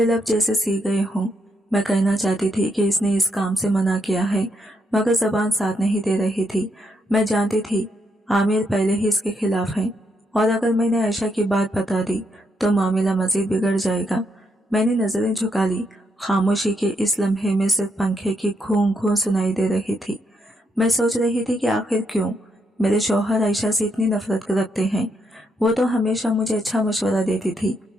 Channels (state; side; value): normal; both; correlation 0.78